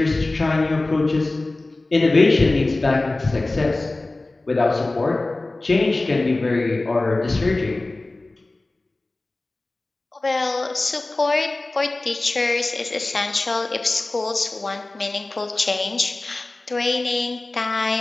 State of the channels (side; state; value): right; quieter; 3.0 dB